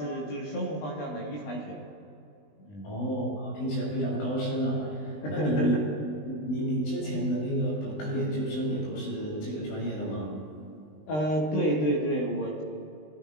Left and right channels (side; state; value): right; late; 20 ms